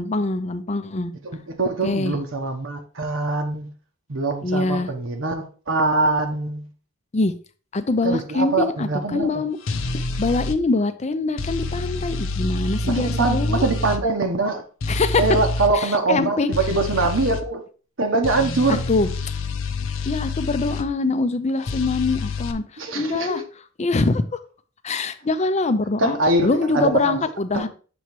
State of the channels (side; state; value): both; normal; correlation 0.26